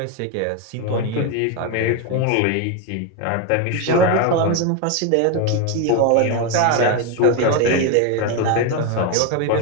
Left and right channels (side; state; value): both; different; correlation 0.02